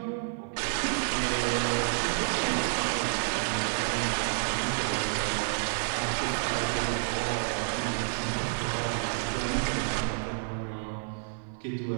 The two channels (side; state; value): left; silent; 58 dB below the other